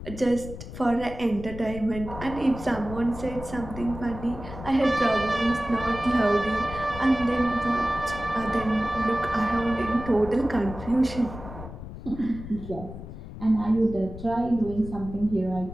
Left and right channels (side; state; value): left; noise; rumble, 11 dB below the sound